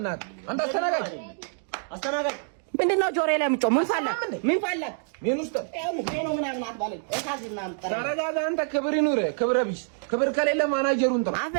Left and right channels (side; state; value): left; silent; digital silence